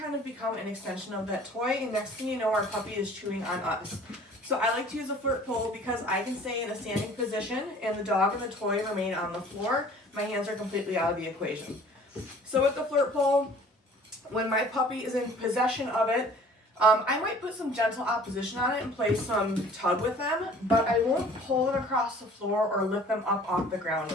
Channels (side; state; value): both; normal; correlation 0.50